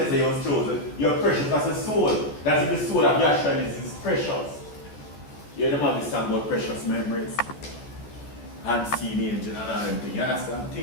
you was chosen. You're precious as a soul. That's the soul of Yahshua is precious. You know have this song about precious memories. And see the angel and all them things. You understand?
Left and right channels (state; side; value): late; right; 14 ms